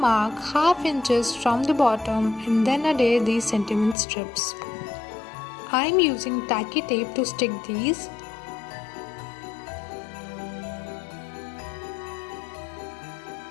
half inches from the bottom and then adhere these sentiment strips. I'm using tacky tape to stick these.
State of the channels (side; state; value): right; drops out; at 4.0 s